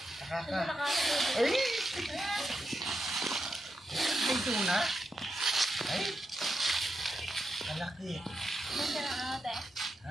Nakaka. Ay! Ay, doon ha. Ay! Kalaki. Ganda ng ate.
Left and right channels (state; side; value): normal; both; correlation 0.86